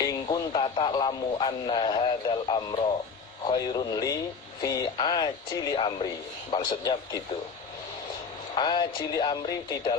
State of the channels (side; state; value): right; quieter; 5.3 dB